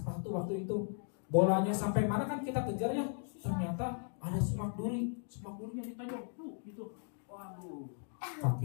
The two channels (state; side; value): silent; right; 53 dB below the other